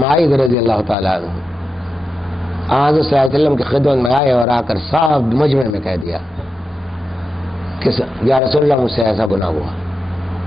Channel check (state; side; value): normal; both; correlation 0.89